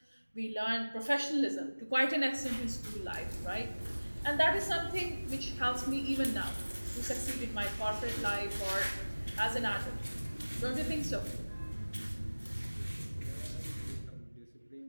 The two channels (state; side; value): inverted; both; correlation -1.00